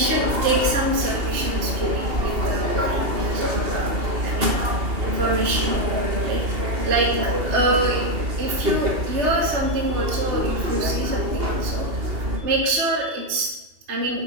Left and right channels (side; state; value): left; late; 2.8 ms